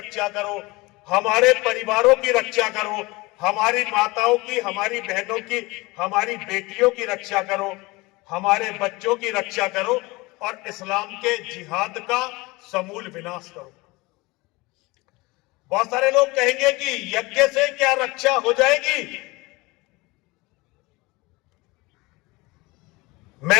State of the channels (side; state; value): right; quieter; 23.1 dB